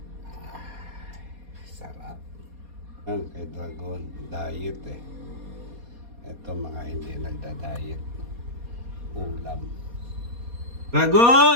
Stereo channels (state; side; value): late; left; 4.2 ms